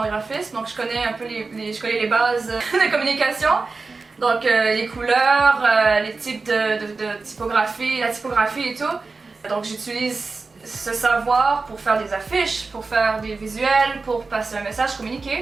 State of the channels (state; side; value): quieter; left; 4.0 dB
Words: graphisme, donc je connais un peu je connais les bases de communication. Donc les couleurs, les types de typographie, la typographie et tout. Donc j'utilise ce savoir pour faire des affiches, pour faire des visuels, pour passer un message,